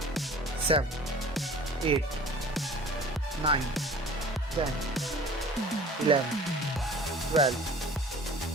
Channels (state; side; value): normal; both; correlation 0.45